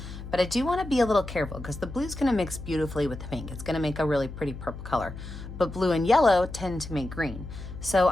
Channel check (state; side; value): noise; left; hum, 11 dB below the sound